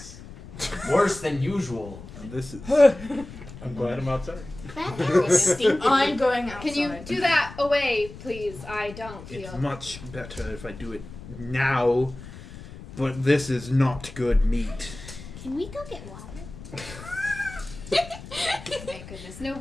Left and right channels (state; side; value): noise; left; rumble, 15 dB below the sound